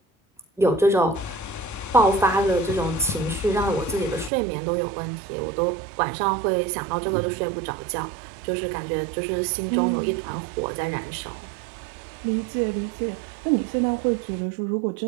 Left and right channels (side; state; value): left; drops out; at 4.3 s